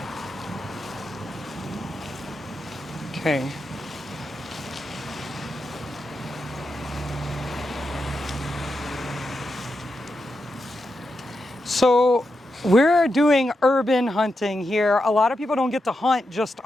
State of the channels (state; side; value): normal; both; correlation 0.87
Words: Okay. So we're doing urban hunting here. A lot of people don't get to hunt just